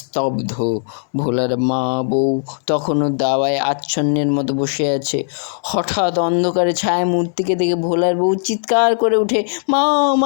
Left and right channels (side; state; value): right; silent; 67 dB below the other